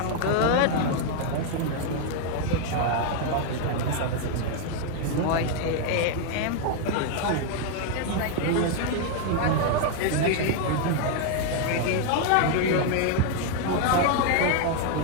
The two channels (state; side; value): different; both; correlation 0.00